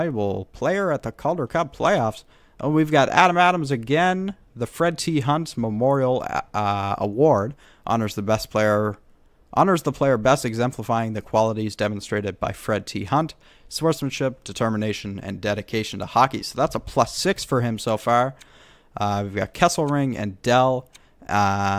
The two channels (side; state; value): both; identical; correlation 1.00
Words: player at the Calder Cup playoffs. Oh, we've got Adam Adams again. The Fred T. Hunt Memorial Award honors the player best exemplifying the qualities demonstrated by Fred T. Hunt: sportsmanship, determination, and dedication to hockey. So that's a +6 for him so far. We've got Kesselring and Dell,